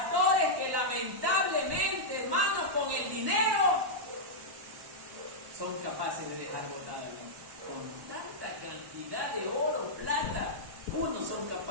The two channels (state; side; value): late; left; 1.1 ms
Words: que lamentablemente, hermanos, con el dinero son capaces de dejar botada con tanta cantidad de oro, plata. Unos son